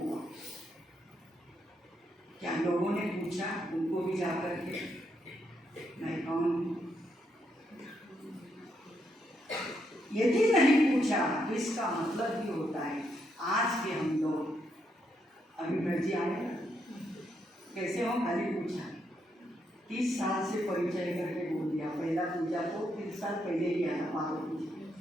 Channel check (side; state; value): both; normal; correlation 0.78